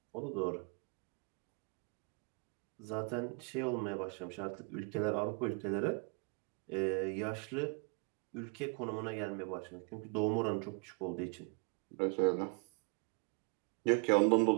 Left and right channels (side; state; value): left; quieter; 34.0 dB